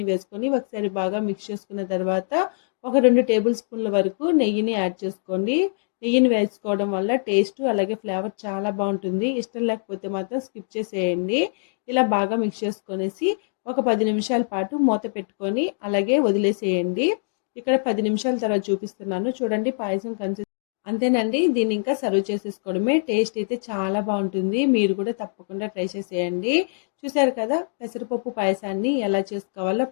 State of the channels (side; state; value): right; silent; digital silence